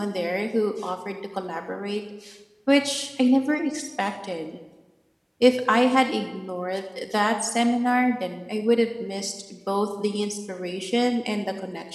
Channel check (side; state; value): both; identical; correlation 1.00